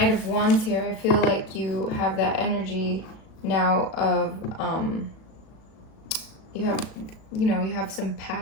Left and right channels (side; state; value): right; late; 37 ms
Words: of Wands here, I feel like you have that energy now of you have some